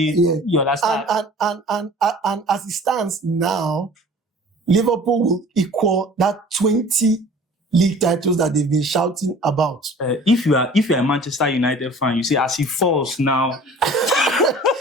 understand. And as it stands now, Liverpool will equal that 20 league titles that they've been shouting about. If you're a Manchester United fan, you say, as he falls now.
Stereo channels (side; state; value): both; normal; correlation 0.46